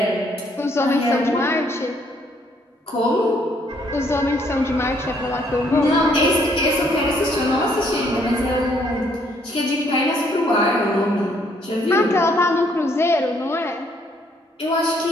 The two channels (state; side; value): normal; both; correlation 0.67